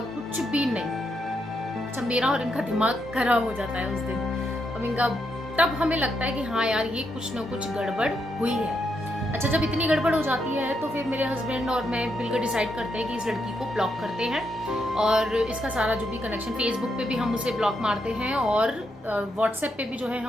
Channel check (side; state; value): both; normal; correlation 0.80